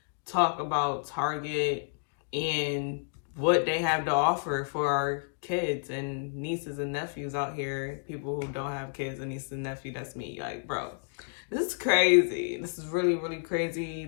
talk about Target and what they have to offer for our kids and nieces and nephews out here. People who don't have kids and nieces and nephews, that's me. Like, bro, this is crazy. This is really, really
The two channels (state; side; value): silent; right; digital silence